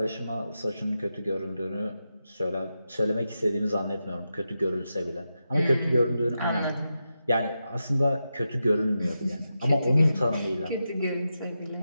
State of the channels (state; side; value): inverted; both; correlation -0.89